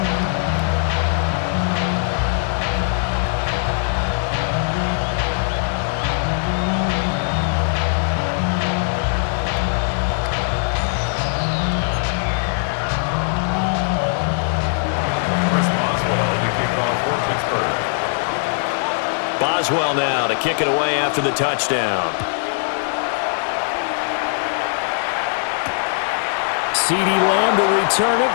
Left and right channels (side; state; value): right; silent; 66 dB below the other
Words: Boswell now to kick it away after the touchdown. CeeDee Lamb to return it